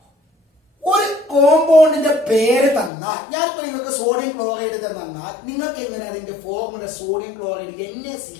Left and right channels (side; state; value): right; drops out; at 2.9 s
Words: ഒരു കോമ്പൗണ്ടിന്റെ പേര് തന്നാൽ, ഞാനിപ്പോ നിങ്ങൾക്ക് സോഡിയം ക്ലോറൈഡ് തന്നാൽ നിങ്ങൾക്ക് എങ്ങനെ അതിന്റെ ഫോർമുല സോഡിയം ക്ലോറൈഡ്